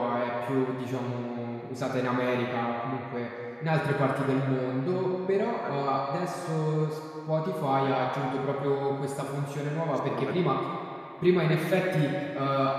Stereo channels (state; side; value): identical; both; correlation 1.00